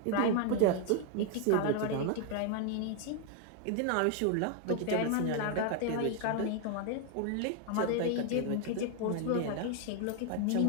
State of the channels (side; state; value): both; different; correlation 0.00